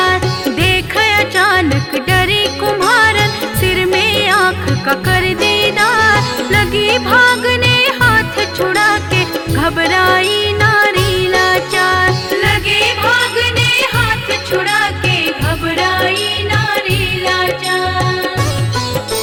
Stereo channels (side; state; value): both; identical; correlation 1.00